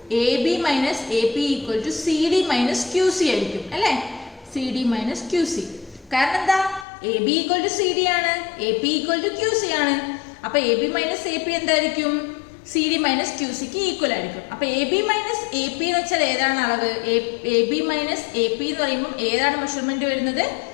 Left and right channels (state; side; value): drops out; right; at 6.9 s